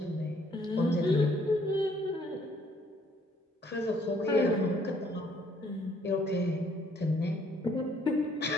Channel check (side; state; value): both; normal; correlation 0.64